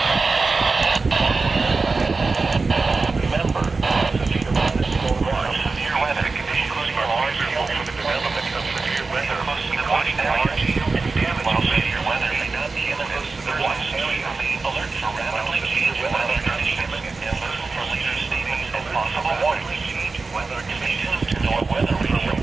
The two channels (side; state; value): left; quieter; 4.0 dB